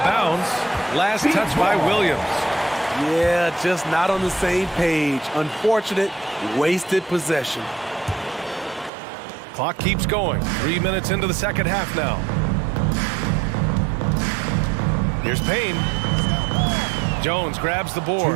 bounds. Last touch by Williams. Yeah, just not on the same page. Unfortunate, wasted possession. Clock keeps going. 3 minutes into the second half now. Here's Payne. Jones grabs the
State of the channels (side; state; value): left; drops out; at 8.9 s